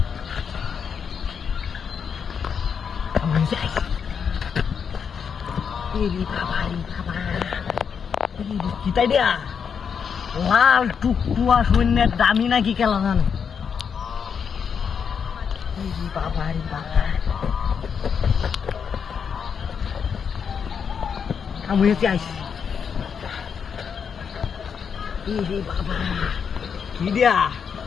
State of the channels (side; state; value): right; quieter; 6.8 dB